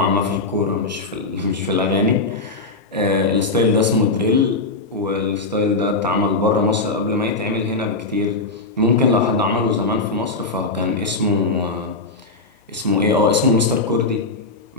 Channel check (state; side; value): quieter; right; 3.4 dB